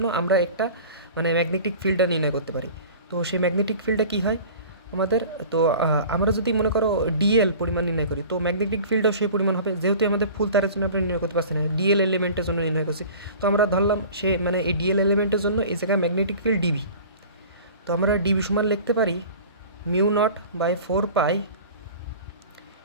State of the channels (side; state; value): both; inverted; correlation -0.41